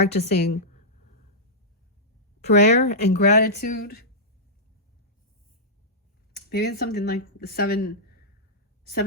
prayer and gratitude. Maybe it's something like the seven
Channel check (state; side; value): normal; both; correlation -0.13